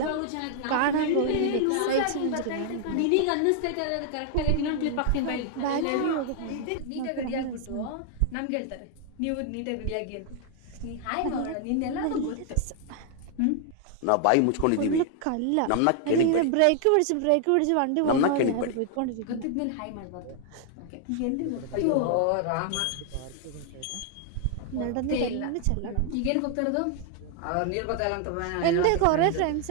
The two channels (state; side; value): different; both; correlation 0.00